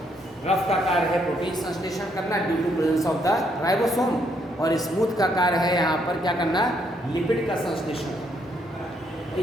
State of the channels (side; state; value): both; normal; correlation 0.72